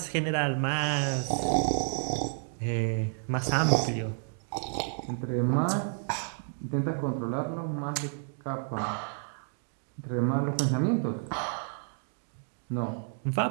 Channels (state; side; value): silent; left; 57 dB below the other